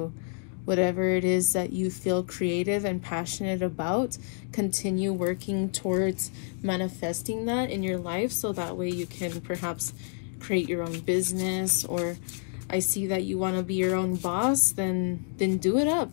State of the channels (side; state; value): right; silent; 59 dB below the other